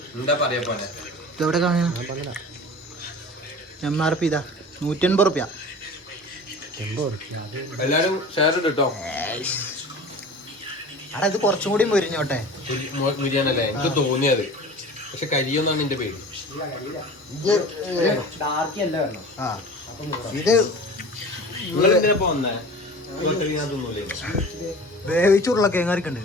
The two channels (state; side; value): normal; both; correlation 0.38